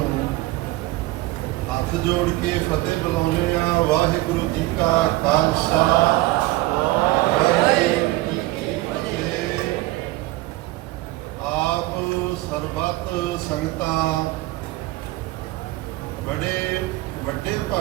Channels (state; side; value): quieter; left; 18.7 dB